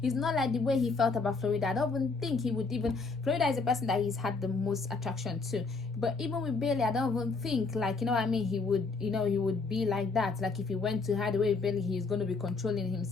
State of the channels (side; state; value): right; quieter; 4.1 dB